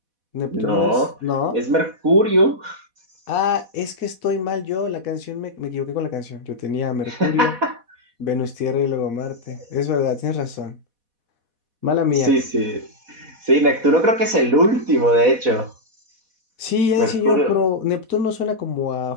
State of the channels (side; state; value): left; late; 4.1 ms